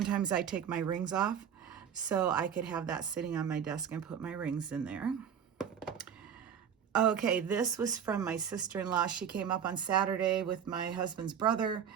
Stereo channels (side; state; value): left; quieter; 8.1 dB